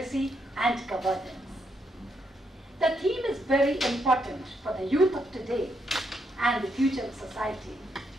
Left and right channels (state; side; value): normal; both; correlation 0.78